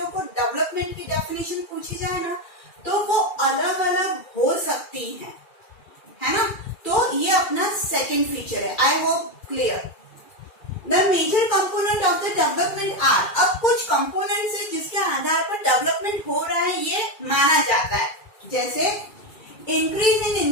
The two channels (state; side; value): late; right; 2.4 ms